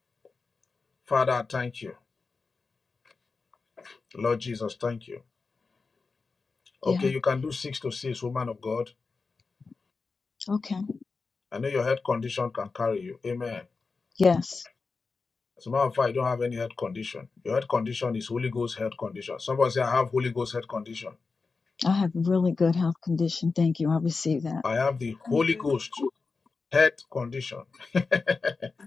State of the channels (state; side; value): quieter; right; 4.4 dB